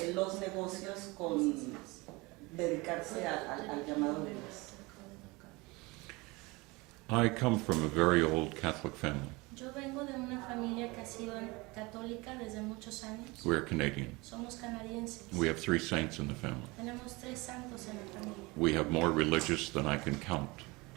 los negocios con dedicarse al llamado de Dios? I come from a very old Catholic family. Yo vengo de una familia que ha sido católica desde muchos años. We're Canadian. Somos canadienses. We have 3 saints in the family. Tenemos 3 santos en la familia. We have more religious than I can count.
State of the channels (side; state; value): left; quieter; 24.3 dB